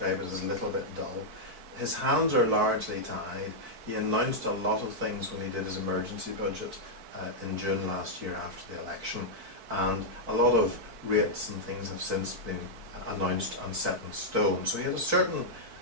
it as a little bit dull. His hands are largely tied. He announced a lot of things when he did his emergency budget in June last year after the election, and a lot of rates and things have since been announced and set in stone. So he had a certain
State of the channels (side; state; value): left; late; 4.6 ms